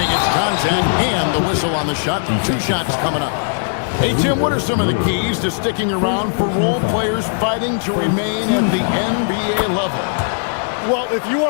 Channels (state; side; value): silent; right; digital silence